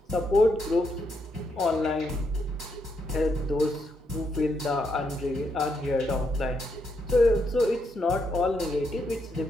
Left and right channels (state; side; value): normal; both; correlation 0.79